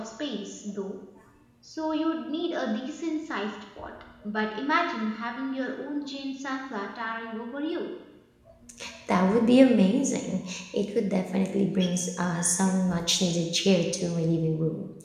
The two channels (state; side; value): identical; both; correlation 1.00